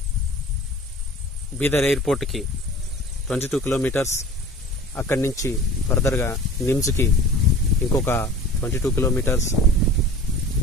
Bidar ఎయిర్పోర్ట్కి 22 kilometres. అక్కడి నుంచి ఫర్దర్గా నిమ్స్కి ఇంకొక 22 కిలోమీటర్స్.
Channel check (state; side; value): normal; both; correlation 0.42